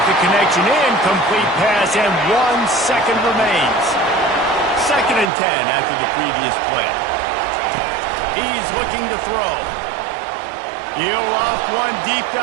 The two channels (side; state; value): left; drops out; at 5.3 s